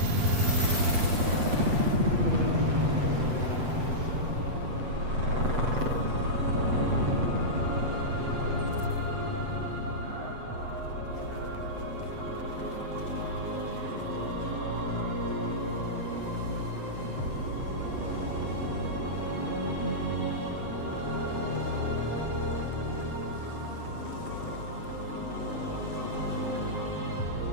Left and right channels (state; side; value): late; left; 7.8 ms